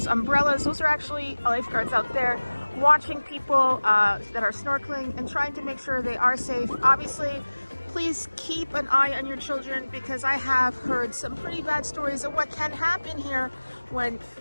umbrellas. Those are actually lifeguards out there watching people that are snorkeling and trying to make sure they are safe. Obviously, please keep an eye on your children, because I have heard some pretty bad stories of what can happen here when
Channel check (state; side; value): inverted; both; correlation -1.00